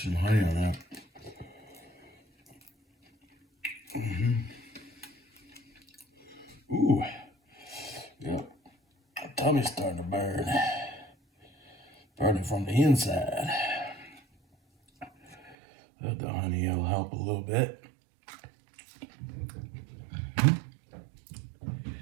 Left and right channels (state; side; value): drops out; left; at 15.6 s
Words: some honey on that. Ooh. Yep. My tummy's starting to burn. Burning from the inside. The honey will help a little bit.